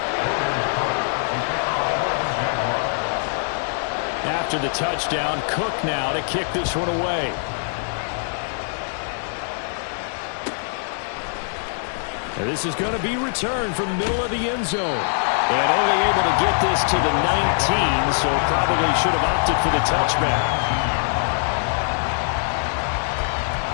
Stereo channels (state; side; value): silent; right; digital silence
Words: After the touchdown, Cook now to kick this one away. And this is going to be returned from the middle of the end zone. And only able to get this to the 19, so probably should have opted for the touchback.